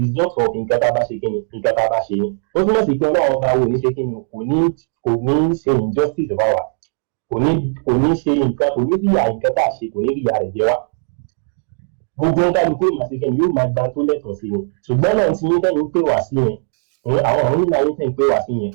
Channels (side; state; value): left; silent; digital silence